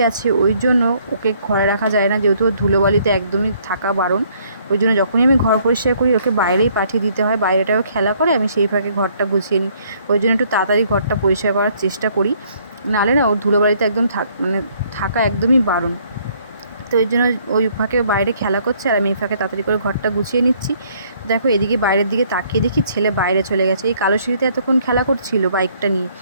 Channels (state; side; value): inverted; both; correlation -0.64